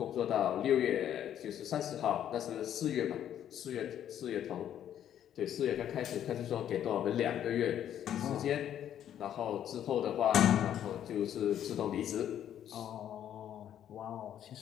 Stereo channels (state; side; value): quieter; right; 10.4 dB